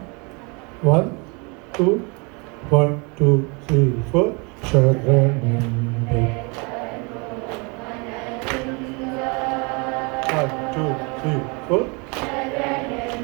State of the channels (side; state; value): left; quieter; 30.8 dB